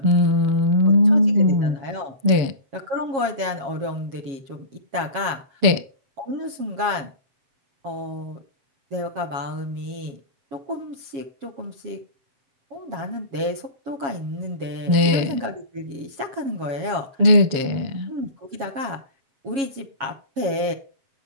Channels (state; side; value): late; left; 7.3 ms